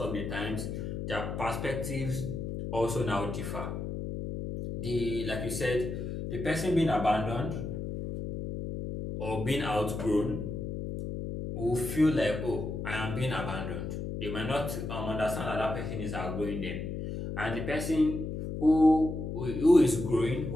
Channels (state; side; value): noise; left; hum, 5 dB below the sound